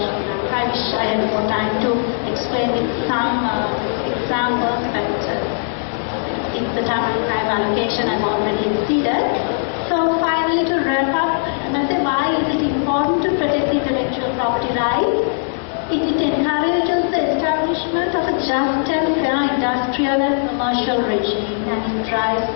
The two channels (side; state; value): right; silent; digital silence